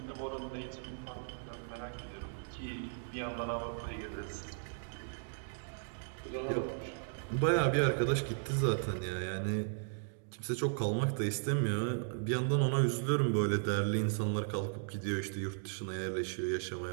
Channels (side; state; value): left; silent; digital silence